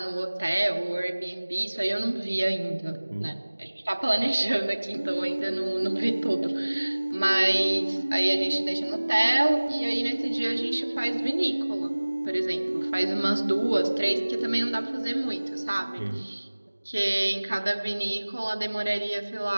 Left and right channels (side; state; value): both; inverted; correlation -1.00